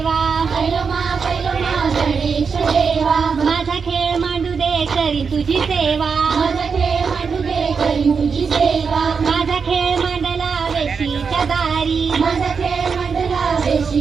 गणेश देवा, माझा खेळ मांडू दे करी तुझी सेवा. माझा खेळ मांडू दे करी तुझी सेवा. माझा खेळ मांडला वेशीच्या दारी. माझा खेळ मांडला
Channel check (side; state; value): left; quieter; 5.6 dB